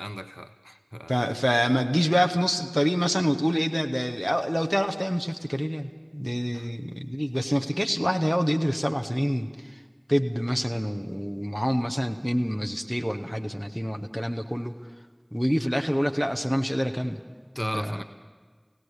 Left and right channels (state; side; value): identical; both; correlation 1.00